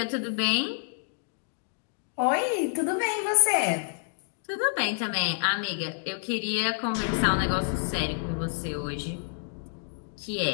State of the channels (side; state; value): right; silent; digital silence